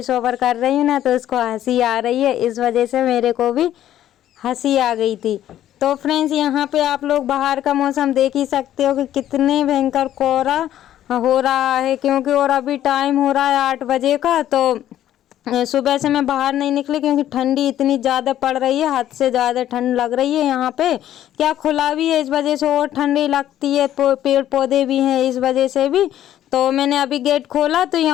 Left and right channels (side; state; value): right; quieter; 12.1 dB